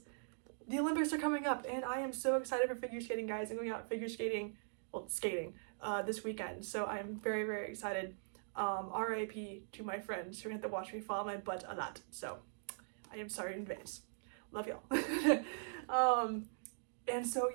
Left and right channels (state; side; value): silent; left; digital silence